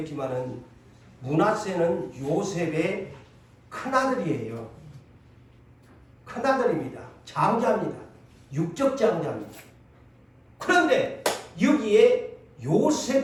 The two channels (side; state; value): both; identical; correlation 1.00